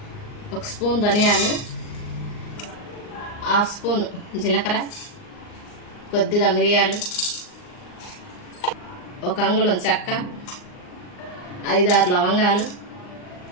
1 స్పూన్ ధనియాలు, 1/2 స్పూన్ జీలకర్ర, కొద్దిగా మిరియాలు, 1 అంగుళం చెక్క, 5-6 లవంగాలు,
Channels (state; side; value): late; right; 39 ms